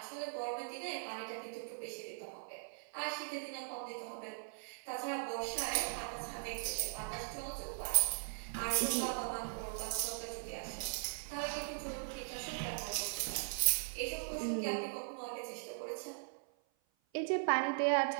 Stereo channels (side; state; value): left; silent; 51 dB below the other